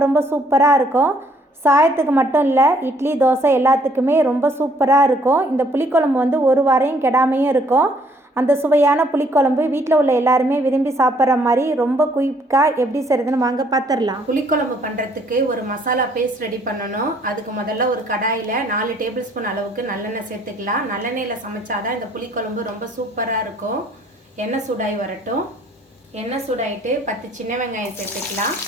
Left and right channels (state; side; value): normal; both; correlation 0.63